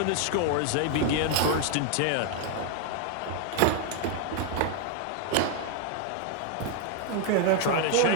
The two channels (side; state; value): both; different; correlation 0.01